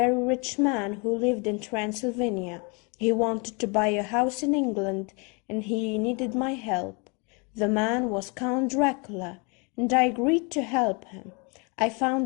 rich man who lived in Transylvania. He wanted to buy a house in England, and he needed my help. The man was Count Dracula, and I agreed to help him. I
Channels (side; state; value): right; quieter; 32.0 dB